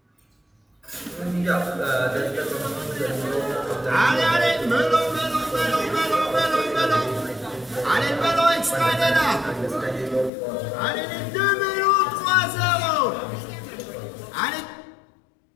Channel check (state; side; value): drops out; right; at 10.3 s